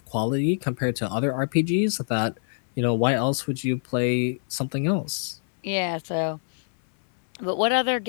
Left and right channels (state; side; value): silent; right; 59 dB below the other